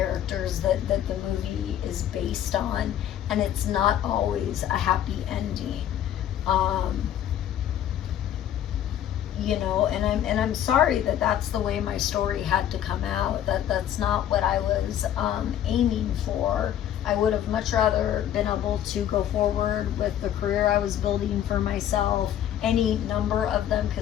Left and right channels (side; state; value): right; quieter; 10.8 dB